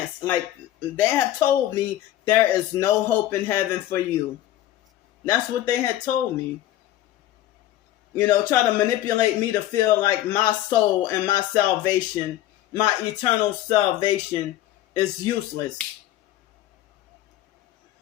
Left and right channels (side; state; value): right; quieter; 13.6 dB